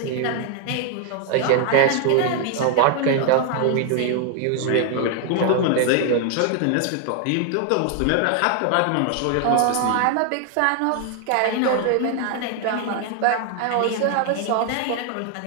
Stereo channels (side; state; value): both; different; correlation 0.00